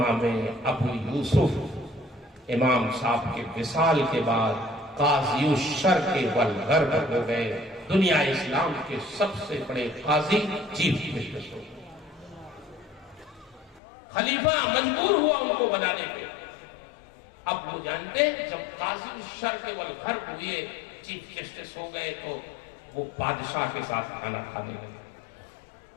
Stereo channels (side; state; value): right; drops out; at 13.8 s